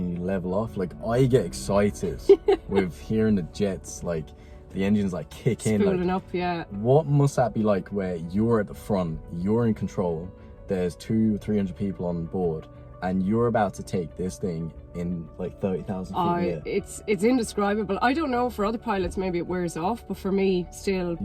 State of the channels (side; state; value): both; identical; correlation 1.00